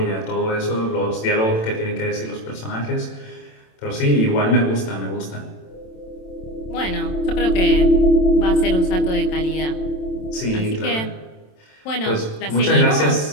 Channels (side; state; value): right; late; 27 ms